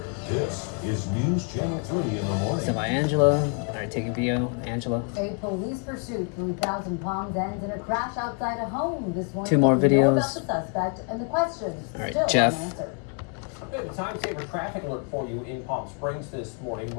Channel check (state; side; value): quieter; right; 39.0 dB